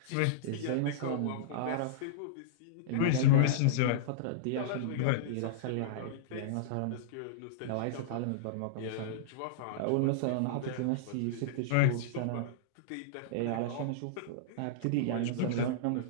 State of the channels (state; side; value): different; both; correlation -0.02